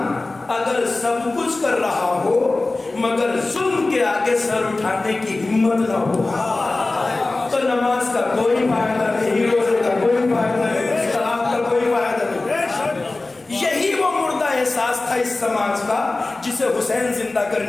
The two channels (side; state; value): right; quieter; 3.2 dB